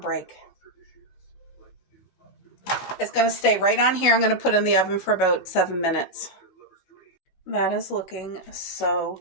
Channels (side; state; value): right; late; 15 ms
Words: It's going to stay right on here. I'm going to put it in the oven for about 7 minutes. That is looking so